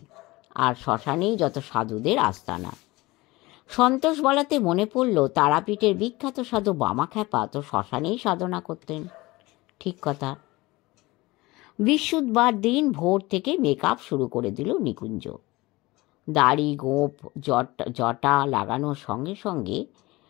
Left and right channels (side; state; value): right; quieter; 21.0 dB